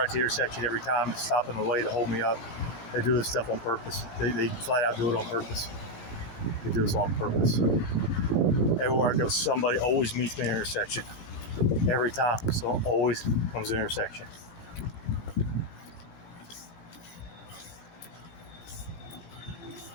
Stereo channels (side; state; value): right; late; 18 ms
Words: to the intersection every time, stop in the way to hold me up. They do this stuff on purpose. They flat out do it on purpose. They do this on purpose. Everywhere I go, somebody always meets me in the intersection. Every time. So always comes to the intersection.